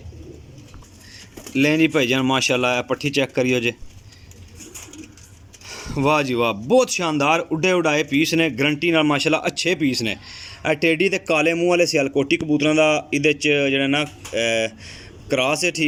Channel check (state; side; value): identical; both; correlation 1.00